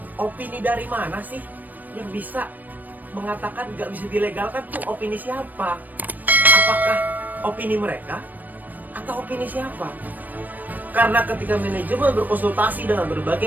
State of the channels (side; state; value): left; late; 0.085 ms